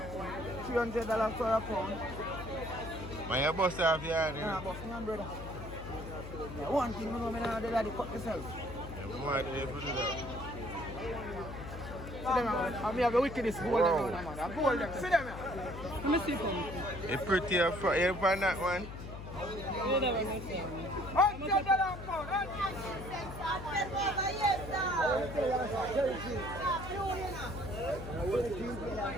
$300 for a pound. Man, you bust off your hand, you Nah, know? boss, man, brother. Yeah, one thing, you know, I do that, cut myself. You might be able to do that. See them, man. I have the wickedest gold Wow. them, man. I gold them. See them, man. Let me see them. It's pretty you find that one? $100 pound.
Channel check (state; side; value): noise; left; hum, 10 dB below the sound